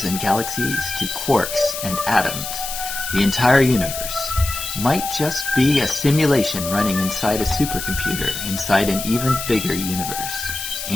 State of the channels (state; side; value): noise; left; hiss, 6 dB below the sound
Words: and galaxies to quarks and atoms, the entire universe, might just be a simulation running inside a supercomputer inside an even bigger universe.